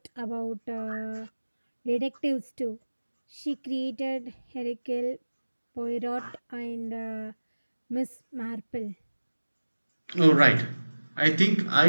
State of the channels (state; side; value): inverted; both; correlation -1.00